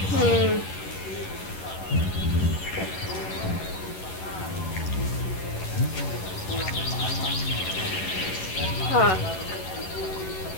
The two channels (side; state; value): right; late; 11 ms